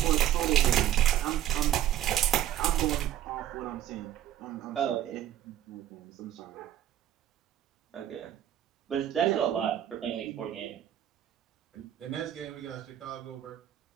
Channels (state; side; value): quieter; left; 11.4 dB